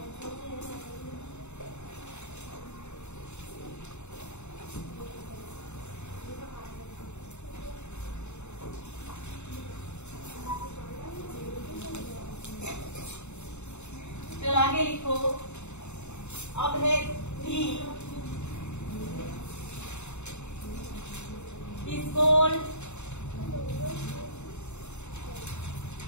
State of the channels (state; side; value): late; right; 0.82 ms